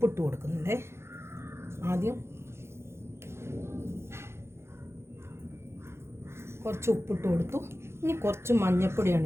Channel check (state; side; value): late; left; 0.12 ms